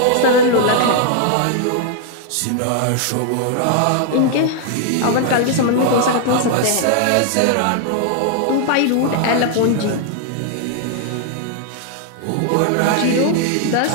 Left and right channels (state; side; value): different; both; correlation 0.00